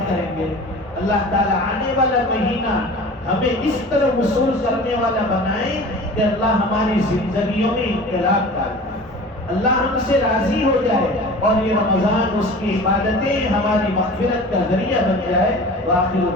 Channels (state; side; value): normal; both; correlation 0.39